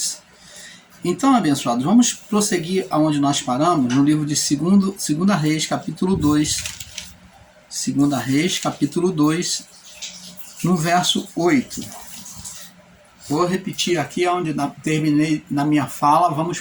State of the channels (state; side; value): identical; both; correlation 1.00